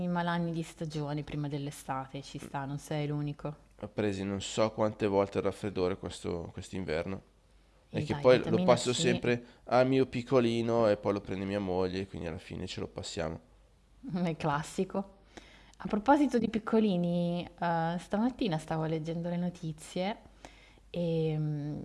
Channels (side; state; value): both; identical; correlation 1.00